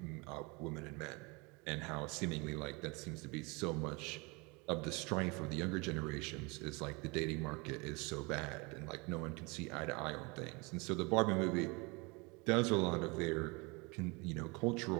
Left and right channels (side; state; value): left; quieter; 28.2 dB